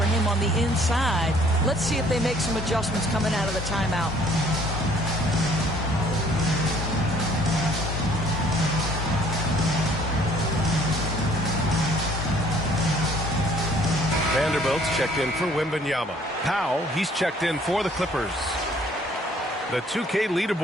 him on the inside. Let's see if they make some adjustments coming out of the timeout. Vanderbilt's checked in for Wembanyama. Powell, he's checked in for the Clippers. The 2K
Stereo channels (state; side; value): normal; both; correlation 0.58